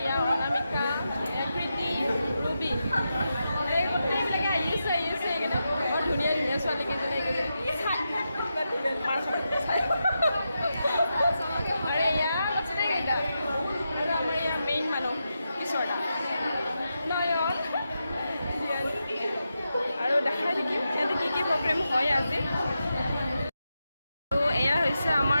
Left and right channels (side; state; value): both; inverted; correlation -0.88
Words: অনামিকা, এয়া প্ৰীতি, ৰুবি, এই গোটেইবিলাকে আহিছে এইকেইটা বৰ ধুনীয়া ধুনীয়া ছোৱালীকেইজনী আৰু এয়া গোটেইকেইটা। আৰু আমাৰ ইয়াৰ মেইন মানুহ কিশোৰদা, নয়ন, আৰু দেখাই থাকিম ইয়াতে কি প্ৰগ্ৰেম হয় আজি। আৰু এয়া হৈছে